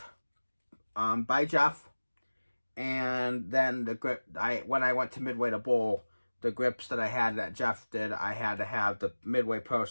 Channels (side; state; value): both; inverted; correlation -1.00